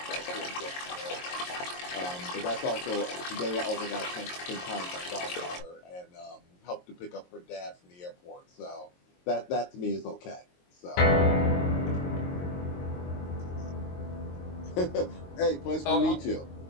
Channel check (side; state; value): right; late; 22 ms